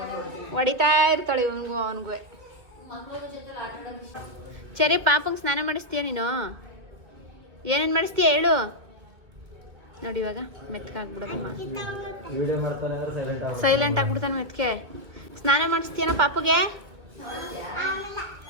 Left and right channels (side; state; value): left; late; 2.4 ms